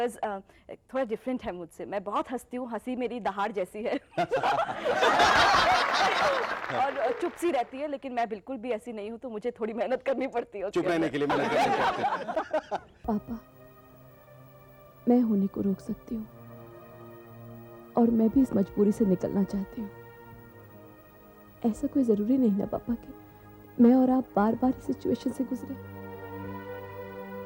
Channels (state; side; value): identical; both; correlation 1.00